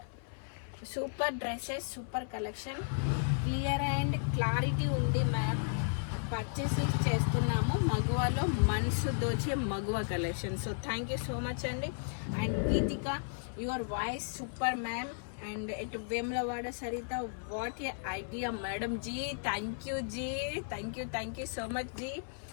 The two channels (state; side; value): silent; right; 55 dB below the other